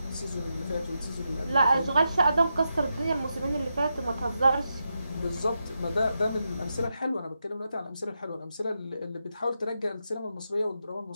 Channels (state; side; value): inverted; both; correlation -0.86